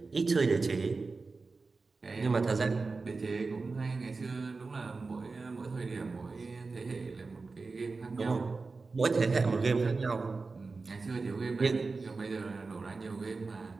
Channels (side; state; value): left; quieter; 4.0 dB